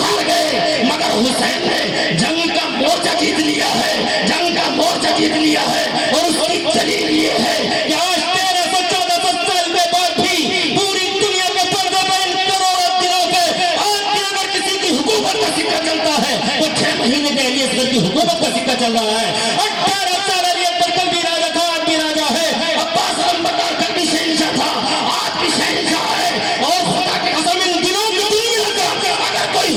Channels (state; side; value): identical; both; correlation 1.00